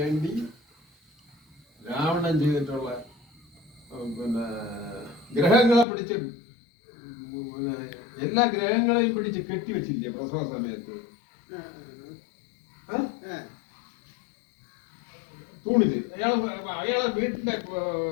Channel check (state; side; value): drops out; right; at 5.9 s